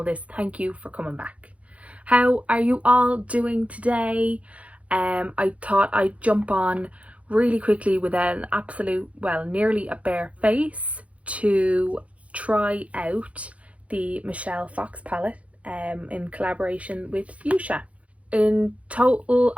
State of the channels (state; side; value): late; left; 0.065 ms